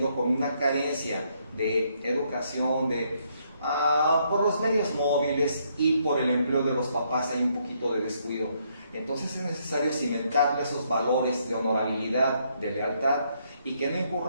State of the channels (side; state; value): both; inverted; correlation -0.73